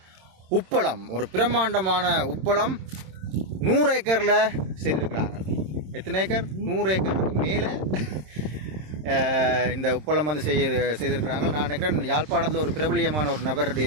உப்பளம், ஒரு பிரம்மாண்டமான உப்பளம் 100 ஏக்கரில் செய்திருக்கிறாங்க. எத்தனை ஏக்கர்? 100 ஏக்கருக்கு மேலே இந்த உப்பளம் வந்து செய்திருக்கிறாங்க. நான் நினைக்கிறேன் யாழ்ப்பாணத்தில் ஒரு பிரபலியமான ஒரு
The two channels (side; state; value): left; late; 26 ms